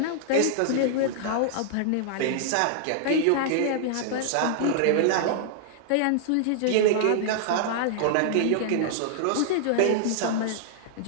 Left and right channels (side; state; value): both; different; correlation -0.01